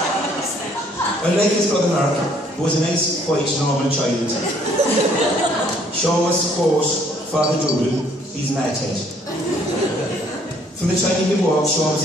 Unlike his brother Mark, who was a nice, quiet, normal child, Sean was, of course, Father Doodle, he's madhead. From the time he could walk, Sean was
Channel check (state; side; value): normal; both; correlation 0.63